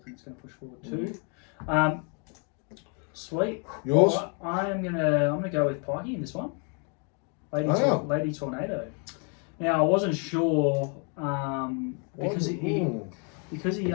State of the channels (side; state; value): right; quieter; 38.1 dB